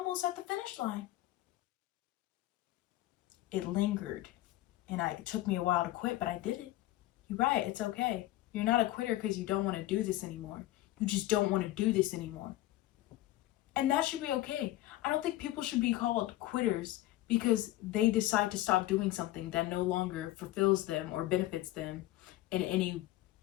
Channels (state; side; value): quieter; right; 16.1 dB